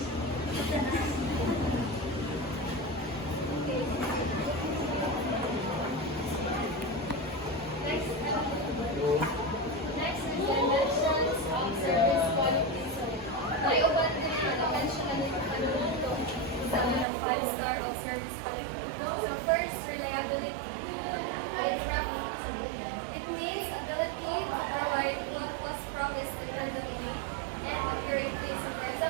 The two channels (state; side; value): drops out; left; at 17.1 s